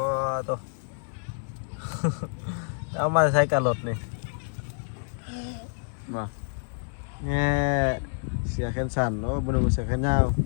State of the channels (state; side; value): silent; right; 60 dB below the other